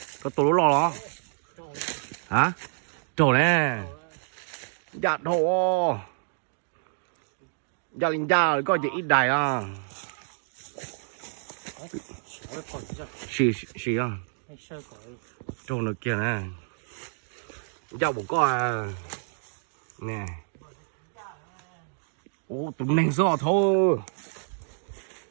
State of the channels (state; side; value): silent; left; digital silence